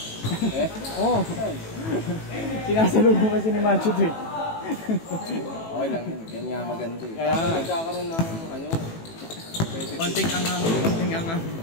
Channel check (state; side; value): late; right; 18 ms